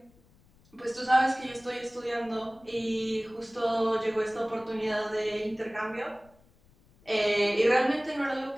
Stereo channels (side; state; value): left; noise; rumble, 30 dB below the sound